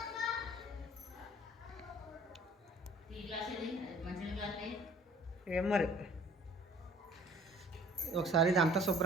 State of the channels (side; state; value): both; normal; correlation 0.52